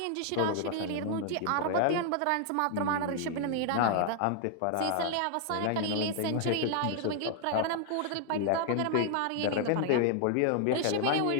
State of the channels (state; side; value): different; both; correlation 0.00